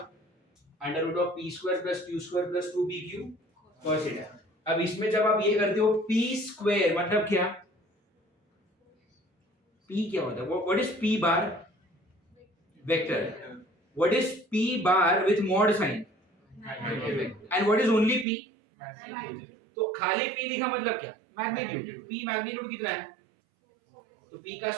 under root of p square plus q square plus 2pq cos theta. अब इसमें जब आप ये करते हो p स्क्वायर मतलब क्या, p क्या होता है, what is p bar, vector, what is p bar with mod sine, and what is only p, तो खाली p लिखा मतलब क्या, मैग्नीट्यूड, p मैग्नीट्यूड कितना है, तो p का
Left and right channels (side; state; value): left; drops out; at 18.2 s